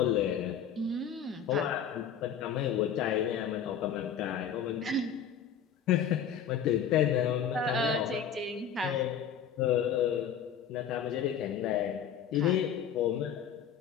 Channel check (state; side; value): quieter; right; 7.9 dB